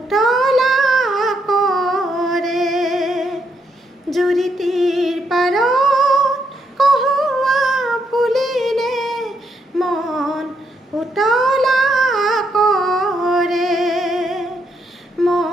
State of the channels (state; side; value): normal; both; correlation 0.77